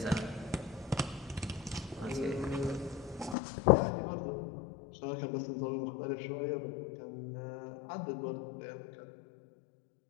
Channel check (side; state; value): right; drops out; at 3.4 s